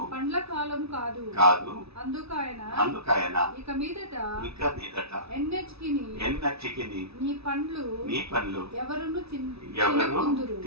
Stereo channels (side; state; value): left; late; 0.78 ms